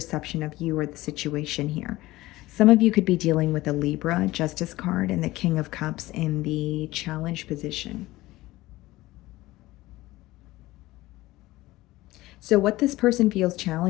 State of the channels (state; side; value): quieter; right; 18.2 dB